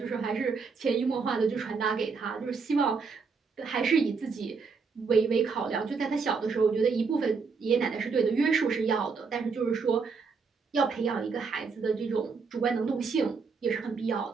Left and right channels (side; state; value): left; quieter; 5.0 dB